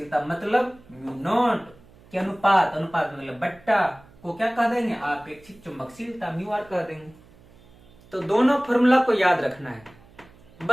मतलब म्यू नॉट के अनुपात, अनुपात मतलब बट्टा को क्या कह देंगे? आपेक्षिक चुंबकशीलता, म्यू आर कह देंगे। तो दोनों फॉर्मूला को याद रखना है।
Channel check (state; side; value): noise; right; hum, 26 dB below the sound